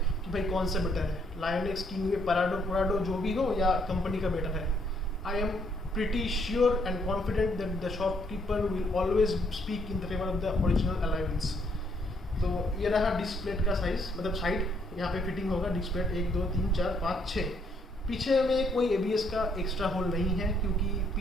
कि भाई कौन सा बेटर है, लायन एक्स, किंगवे, पुराडो जो भी हो या कंपनी का बेटर है, I am pretty sure and confident that the shopkeeper will always speak in the favor of the original alloy wheels। तो ये रहा डिस्क प्लेट का साइज, मतलब साइड यहाँ पे फिटिंग होगा डिस्क प्लेट 1 2 3 4 5 6। पीछे में कोई ABS का एक्स्ट्रा होल नहीं है, क्योंकि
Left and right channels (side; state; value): both; normal; correlation 0.70